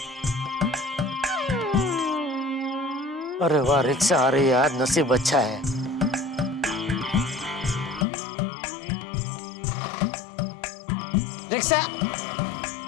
अरे वाह, रिक्शा आ रही है, आज नसीब अच्छा है। रिक्शा।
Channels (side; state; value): right; drops out; at 8.1 s